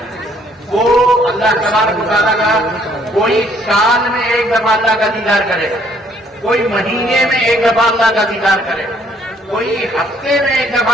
وہ اللہ تبارک و تعالیٰ کا کوئی سال میں ایک دفعہ اللہ کا دیدار کرے گا, کوئی مہینے میں ایک دفعہ اللہ کا دیدار کرے گا, کوئی ہفتے میں ایک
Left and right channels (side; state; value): both; normal; correlation 0.64